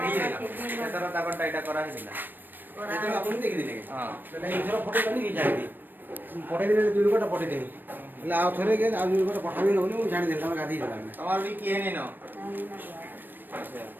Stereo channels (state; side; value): late; left; 0.093 ms